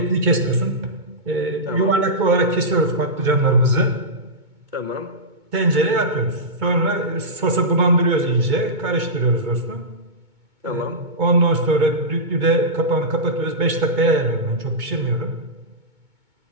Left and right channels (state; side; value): late; left; 2.2 ms